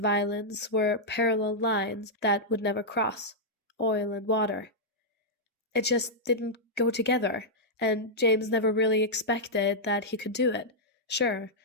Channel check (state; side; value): normal; both; correlation -0.08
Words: were parallel lines that would never cross, oil and water. It just didn't go together, and James never really expected that he could do it. Sure,